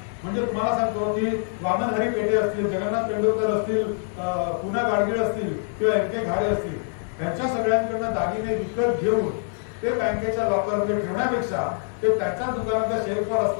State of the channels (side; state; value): right; silent; 62 dB below the other